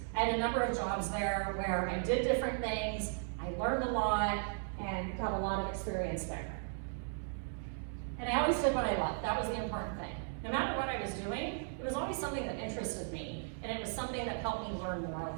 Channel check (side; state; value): left; silent; digital silence